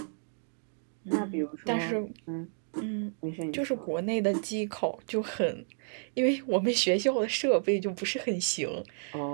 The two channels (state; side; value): silent; left; digital silence